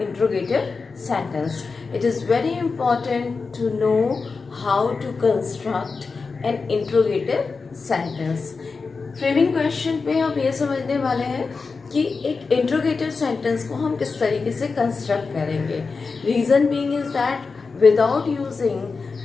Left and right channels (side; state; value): right; quieter; 4.5 dB